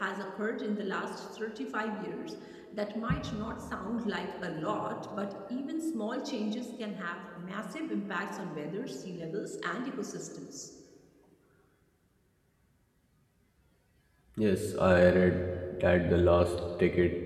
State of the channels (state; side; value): identical; both; correlation 1.00